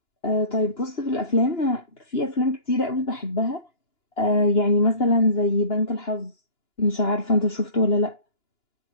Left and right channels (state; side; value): late; right; 2.9 ms